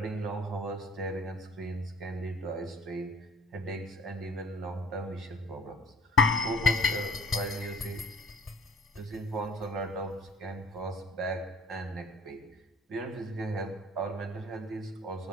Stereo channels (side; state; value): both; normal; correlation 0.51